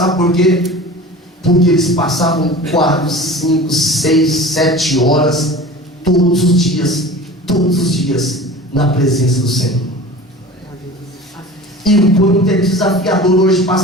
por quê? Porque eles passavam 4, 5, 6, 7 horas todos os dias na presença do Senhor. E o quanto é desafiador hoje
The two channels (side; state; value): both; normal; correlation 0.38